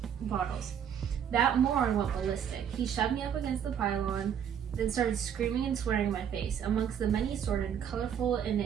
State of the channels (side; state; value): left; quieter; 8.6 dB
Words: That moron went ballistic. He shoved me up against the pylon, then started screaming and swearing in my face. Amongst the many assorted, colorful,